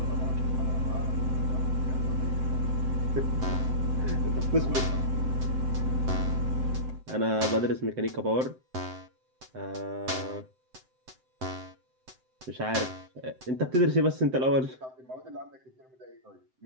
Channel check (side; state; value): left; late; 7.8 ms